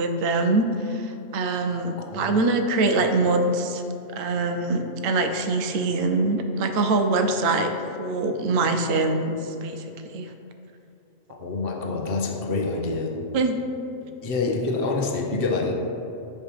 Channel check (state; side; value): late; left; 8.7 ms